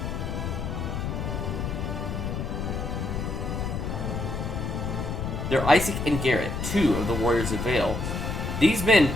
They're Isaac and Garrett, 2 of the Warriors of Vale. These men,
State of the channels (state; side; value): noise; left; rumble, 3 dB below the sound